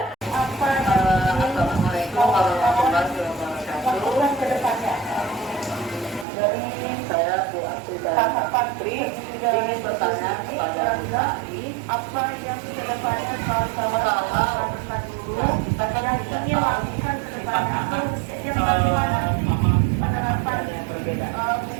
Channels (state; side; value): drops out; left; at 6.2 s